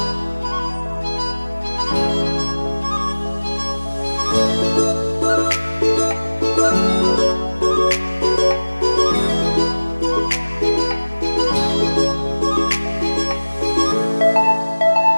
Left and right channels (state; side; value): inverted; both; correlation -1.00